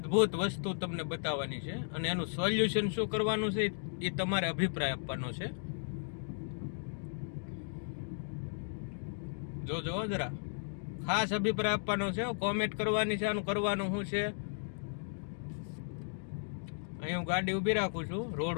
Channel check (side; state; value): right; silent; digital silence